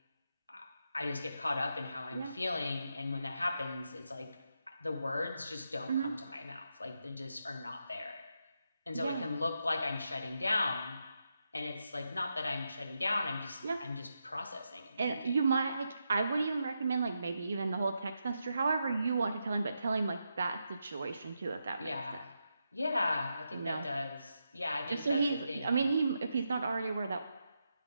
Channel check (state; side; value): inverted; both; correlation -0.85